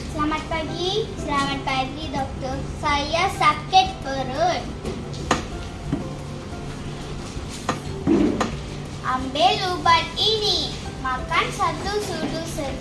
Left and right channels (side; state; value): both; identical; correlation 1.00